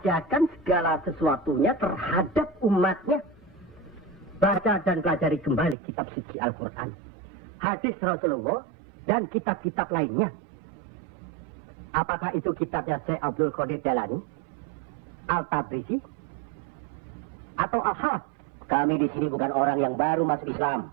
segala sesuatunya terhadap umatnya. Baca dan pelajari kembali kitab suci Al-Quran. Hadis Rasulullah. Dan kitab-kitab lainnya. Apakah itu kitabnya Syekh Abdul Qadir Jalani? Al-Tabrisi? Atau Al-Haq? Kami di sini bukan orang yang baru masuk Islam.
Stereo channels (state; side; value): drops out; left; at 5.8 s